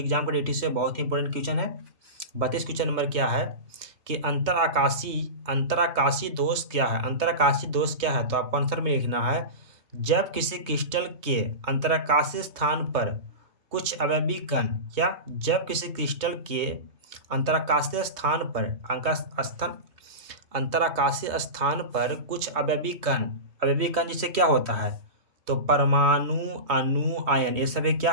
के ड्यूटी से बहुत ही इंपॉर्टेंट क्वेश्चन है। 32 क्वेश्चन नंबर क्या है कि अंतराकाशी दोष क्या है। अंतराकाशी दोष क्या है, तो आपको आंसर में लिखना है जब किसी क्रिस्टल के अंतराकाशी स्थान पर कुछ अवयवी कण, क्या, जब किसी क्रिस्टल के अंतराकाशीय स्थान पर कुछ अवयवी कण जिससे क्या होता है, तो परमाणु, अणु, आयन, ये सभी क्या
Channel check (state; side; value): late; left; 3.2 ms